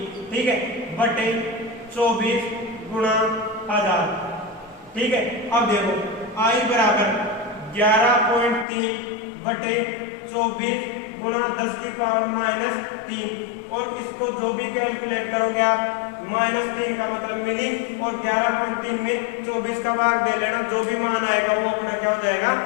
ठीक है, बटे 24 गुणा 1000, ठीक है। अब देखो आई बराबर 11.3 बटे 24 गुणा 10 की पावर माइनस 3, और इसको जो भी कैलकुलेट करोगे आप -3 का मतलब मिली, और 11.3 में 24 का भाग दे लेना, जो भी मान आएगा वो अपना क्या हो जाएगा,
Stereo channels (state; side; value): drops out; right; at 8.7 s